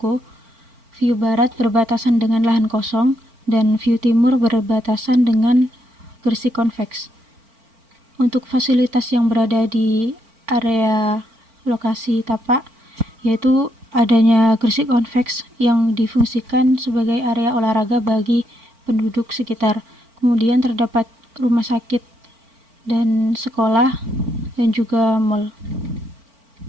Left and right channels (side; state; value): left; late; 4.4 ms